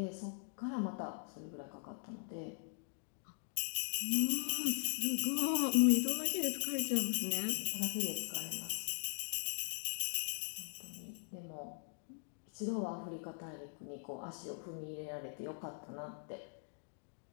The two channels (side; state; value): right; silent; digital silence